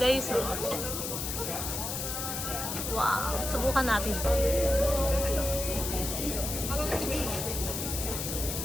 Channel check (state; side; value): noise; left; hiss, 4 dB below the sound